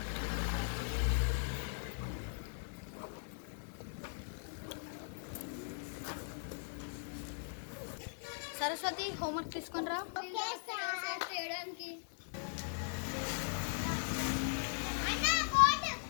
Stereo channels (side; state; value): right; silent; 52 dB below the other